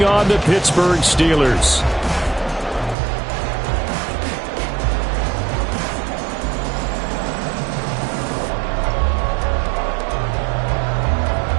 on the Pittsburgh Steelers.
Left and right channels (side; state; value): left; drops out; at 3.0 s